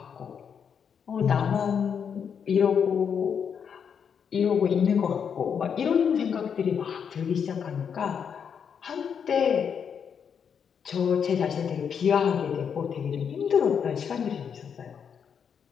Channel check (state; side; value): quieter; right; 7.2 dB